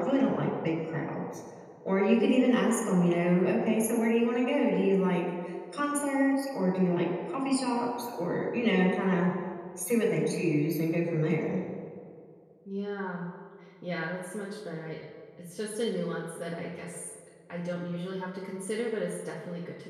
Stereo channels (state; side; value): identical; both; correlation 1.00